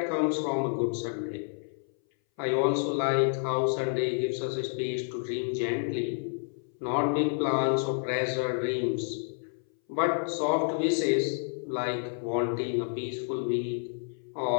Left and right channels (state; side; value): silent; right; 58 dB below the other